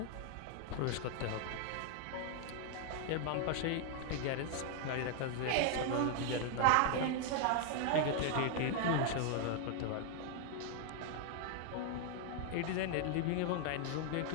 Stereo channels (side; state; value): both; different; correlation 0.00